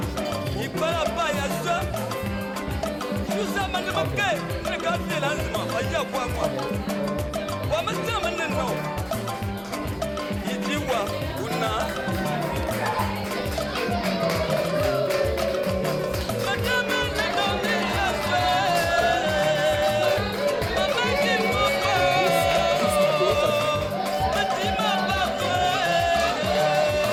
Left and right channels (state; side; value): identical; both; correlation 1.00